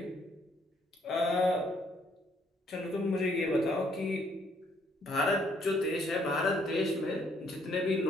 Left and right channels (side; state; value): both; normal; correlation 0.67